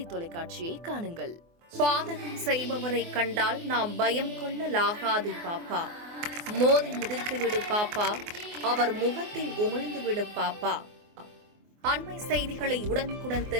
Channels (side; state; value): left; late; 24 ms